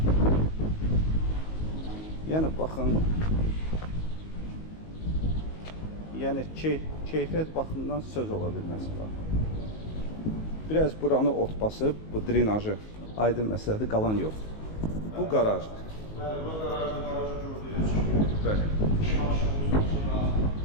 Yəni baxın. Yəni keyfiyyət baxımından söz ola bilməz bax. Biraz buranı ot basıb, bu drenajı aydın məsələdir, qalan yoxdur. Bu qarajdır. Bəli, bu qarajda qarajı gördüyünüz kimi. Bəli. İki maşınımız maşınla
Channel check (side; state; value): right; late; 19 ms